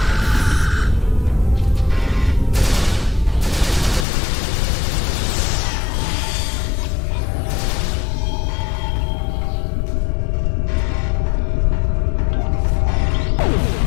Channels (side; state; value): right; drops out; at 4.0 s